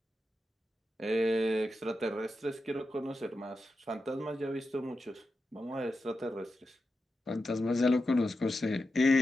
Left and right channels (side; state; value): both; normal; correlation 0.90